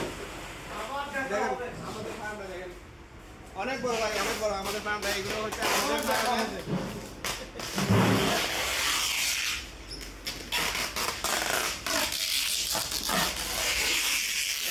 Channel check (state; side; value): identical; both; correlation 1.00